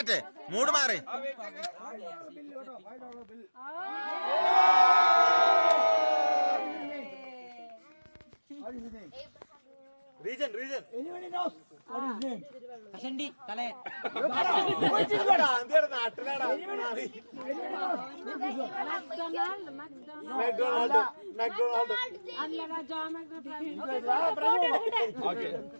മൂട് മാറി. റീജൻ റീജൻ നാട്ടിലാടാ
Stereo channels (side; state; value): both; inverted; correlation -1.00